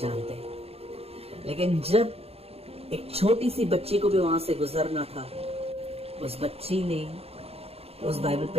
हैं। लेकिन जब एक छोटी सी बच्ची को भी वहां से गुजरना था, उस बच्ची ने उस बाइबल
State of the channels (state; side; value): late; left; 0.29 ms